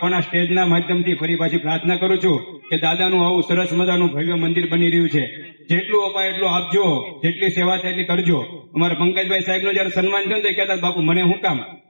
પણ આ સ્ટેજના માધ્યમથી ફરી પાછી પ્રાર્થના કરું છું કે દાદાનું આવું સરસ મજાનું ભવ્ય મંદિર બની રહ્યું છે. જેટલું અપાય એટલું આપજો, જેટલી સેવા થાય એટલી કરજો. અમારા પંકજભાઈ સાહેબનું જયારે સન્માન થયું તો કહેતા બાપુ મને શું કામ,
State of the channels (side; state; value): both; inverted; correlation -1.00